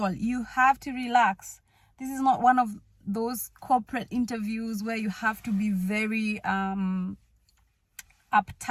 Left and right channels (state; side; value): identical; both; correlation 1.00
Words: you have to relax. This is not one of those corporate interviews where you have to be very